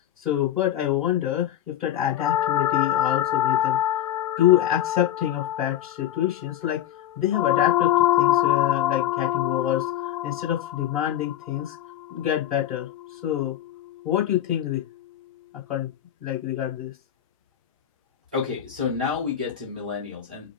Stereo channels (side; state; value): right; quieter; 11.6 dB